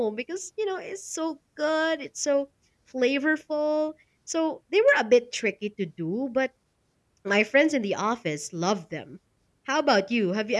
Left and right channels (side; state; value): both; identical; correlation 1.00